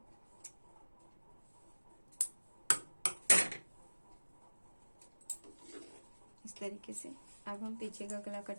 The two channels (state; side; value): inverted; both; correlation -1.00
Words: इस तरीके से। अब हम पीछे का गला